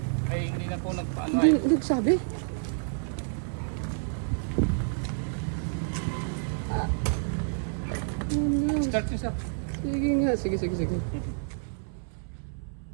Ay, hindi na po nagpaano Hindi, nagsabi. Start nyo sa... Sige nga, sige.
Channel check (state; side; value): silent; left; 59 dB below the other